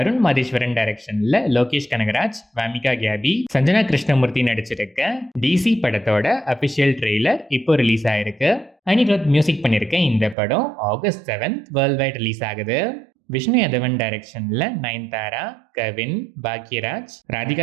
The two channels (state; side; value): drops out; left; at 10.4 s